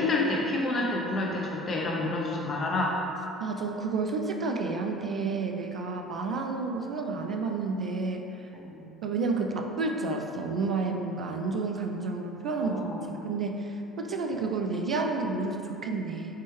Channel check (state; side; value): normal; both; correlation 0.37